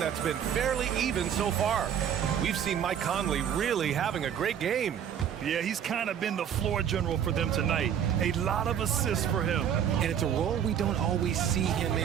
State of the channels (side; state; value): left; quieter; 8.9 dB